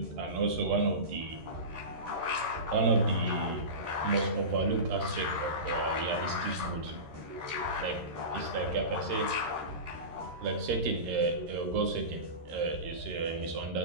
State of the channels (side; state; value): left; late; 13 ms